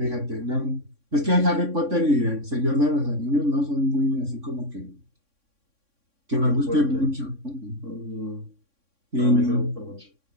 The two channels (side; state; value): left; late; 3.6 ms